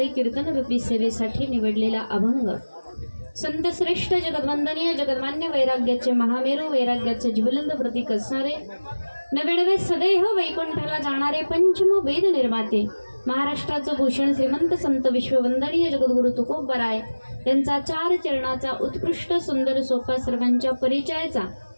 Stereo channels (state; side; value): inverted; both; correlation -1.00